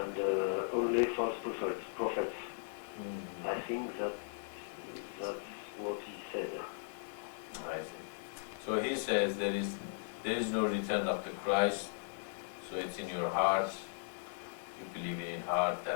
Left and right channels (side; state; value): right; silent; digital silence